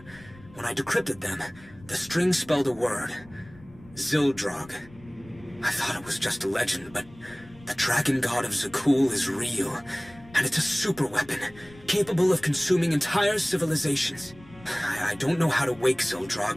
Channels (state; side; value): noise; left; rumble, 22 dB below the sound